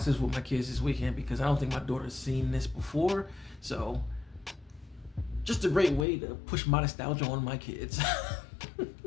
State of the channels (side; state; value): right; drops out; at 6.1 s